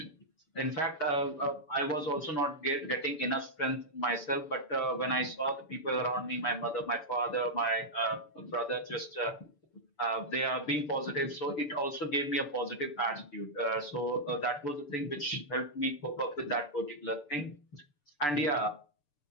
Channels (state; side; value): late; right; 6.8 ms